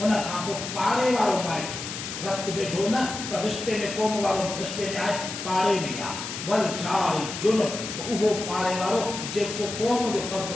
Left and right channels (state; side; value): noise; left; hiss, 7 dB below the sound